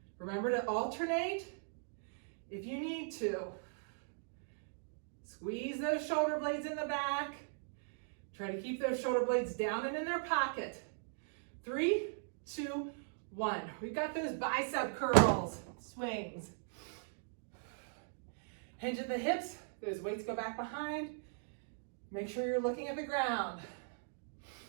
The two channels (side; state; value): left; silent; digital silence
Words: Remember to alternate if you need to. Squeeze those shoulder blades in the back. Try to keep those shoulder blades down and in their pocket. 3, 2, 1. We've got those bicep curls, swings. Hinge at the hips. Those weights go back behind. Make sure you're looking at the ground.